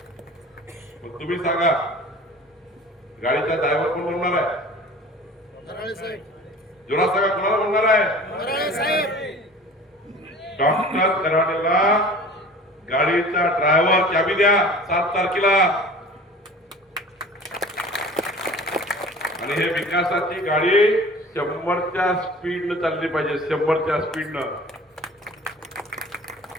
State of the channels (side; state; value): both; normal; correlation 0.42